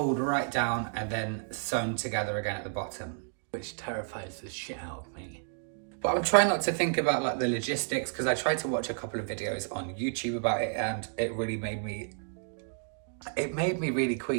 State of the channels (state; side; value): silent; left; digital silence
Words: right down and then sewn together again at the bottom, which terrifies the shit out of me. But I'm trying not to think about like the logistics, because I tried to watch a couple of videos on YouTube about it, and it really made me really